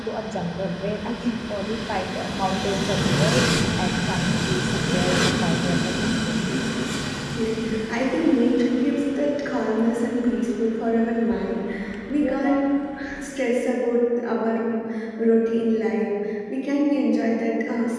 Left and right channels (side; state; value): both; identical; correlation 1.00